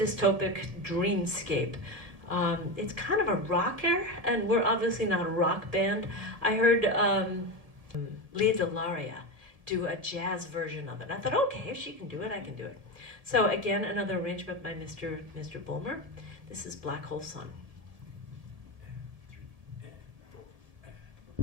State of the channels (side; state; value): left; late; 1.7 ms